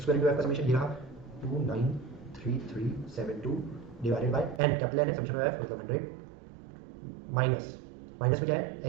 square into f का समेशन ये रहा 2933372 divided by N, capital N है, समेशन ऑफ एफ मतलब 100 माइनस माइनस में क्या है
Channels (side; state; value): left; drops out; at 4.6 s